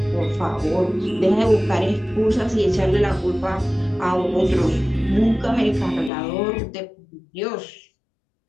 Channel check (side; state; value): right; drops out; at 6.1 s